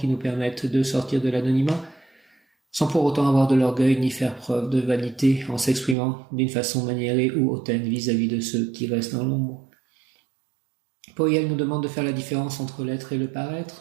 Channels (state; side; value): drops out; left; at 6.0 s